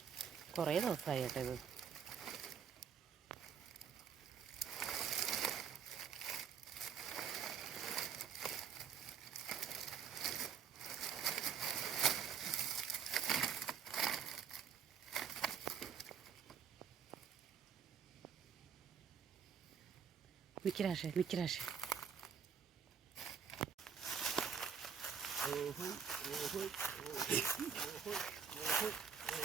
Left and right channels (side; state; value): left; quieter; 7.0 dB